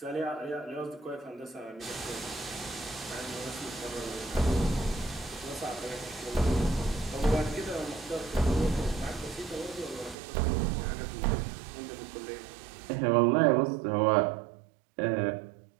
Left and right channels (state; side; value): drops out; left; at 10.2 s